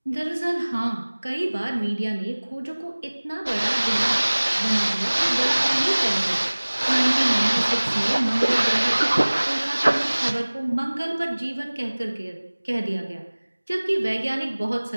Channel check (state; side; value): inverted; both; correlation -1.00